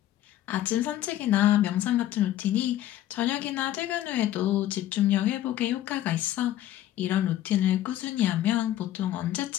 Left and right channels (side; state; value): right; quieter; 13.0 dB